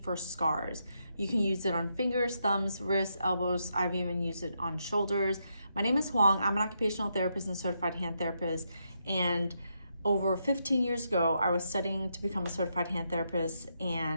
for scars. You can use it on fingers, thumbs, wrists, elbows. I've even used it on shoulders. My name is Huang. I'm an occupational therapist and certified hand therapist. And over 15 years ago, I was studying to become a certified hand therapist.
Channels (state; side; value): inverted; both; correlation -0.81